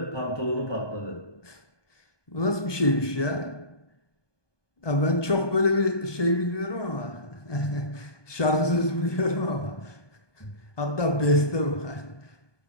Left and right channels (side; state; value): right; late; 1.2 ms